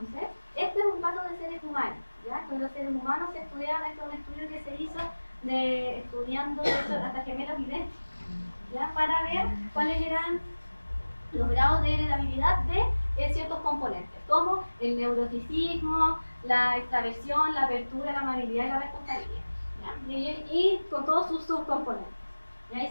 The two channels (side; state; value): both; inverted; correlation -1.00